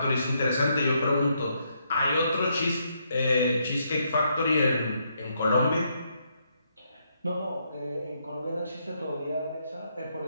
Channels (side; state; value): both; inverted; correlation -0.76